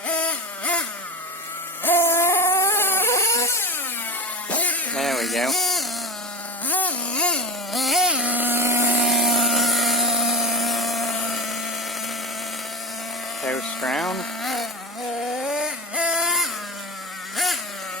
There we go. Coast round.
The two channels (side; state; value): both; normal; correlation 0.24